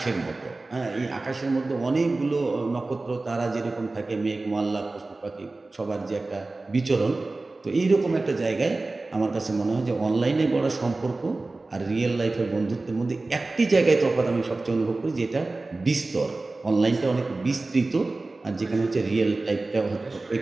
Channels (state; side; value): quieter; left; 3.3 dB